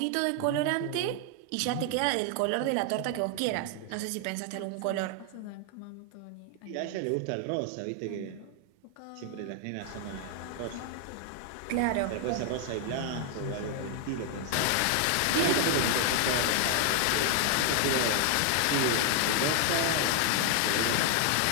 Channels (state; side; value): different; both; correlation 0.00